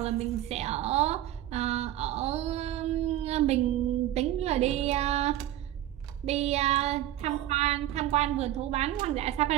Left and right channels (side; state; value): left; quieter; 13.2 dB